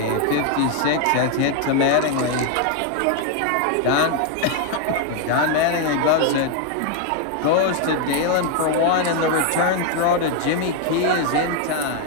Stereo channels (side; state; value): both; different; correlation 0.01